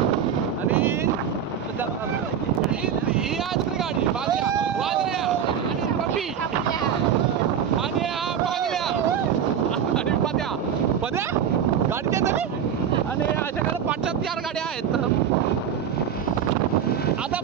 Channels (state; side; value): quieter; left; 8.4 dB